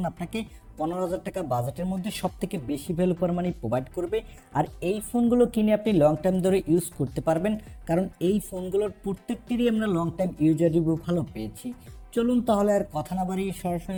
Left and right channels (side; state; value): both; identical; correlation 1.00